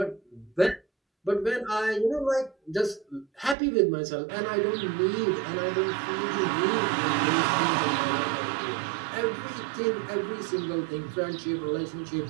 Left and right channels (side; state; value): left; drops out; at 3.6 s